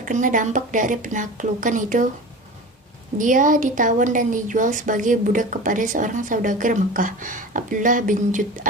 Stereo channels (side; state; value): both; normal; correlation 0.33